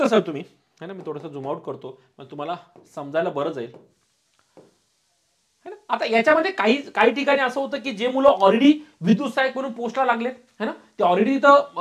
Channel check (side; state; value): both; identical; correlation 1.00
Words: सर तुम्ही, है ना, मी थोडंसं झूम आउट करतो, मग तुम्हाला समजायला बरं जाईल, है ना. आता याच्यामध्ये काही ठिकाणी असं होतं की जे मुलं ऑलरेडी विद्युत सहाय्यक म्हणून पोस्टला लागलेत, है ना, ते ऑलरेडी